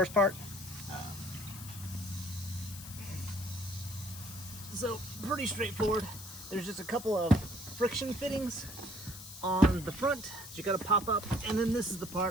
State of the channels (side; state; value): left; noise; hiss, 13 dB below the sound